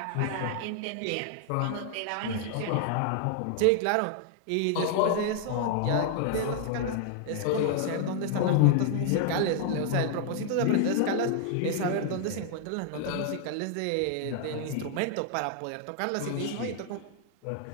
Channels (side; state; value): both; different; correlation 0.00